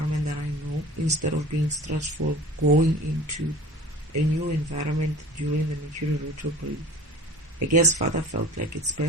that I know instead of being stressful going into a new environment during the Mercury retrograde. I guess Father felt like it's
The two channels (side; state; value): both; normal; correlation 0.41